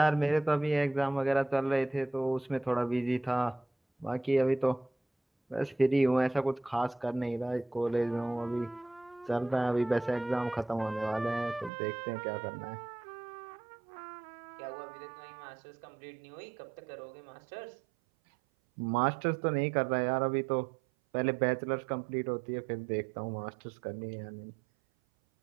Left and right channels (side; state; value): left; drops out; at 11.7 s